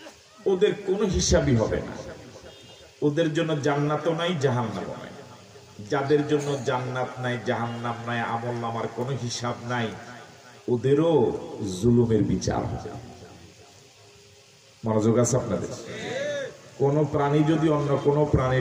ওদের কোনো হিসাবই হবে না। ওদের জন্য জান্নাতও নাই, জাহান্নামও নাই। যাদের জন্য জান্নাত নাই, জাহান্নাম নাই, আমল নামার কোনো হিসাব নাই, ওদেরও জুলুমের বিচার হবে। মনোযোগ আছে আপনাদের? কোন প্রাণী যদি অন্য কোন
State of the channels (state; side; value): identical; both; correlation 1.00